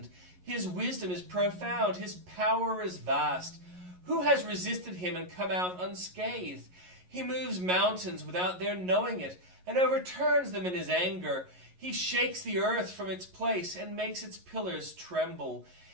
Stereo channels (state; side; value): late; left; 11 ms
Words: His wisdom is profound, his power is vast. Who has resisted him and come out unscathed? He moves mountains without their knowing it, and overturns them in his anger. He shakes the earth from its place and makes its pillars tremble.